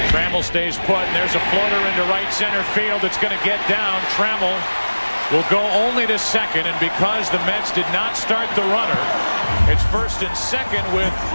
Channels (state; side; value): inverted; both; correlation -1.00